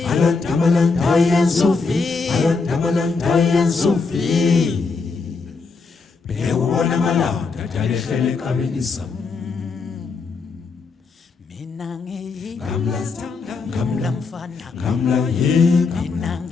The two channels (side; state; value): right; quieter; 4.5 dB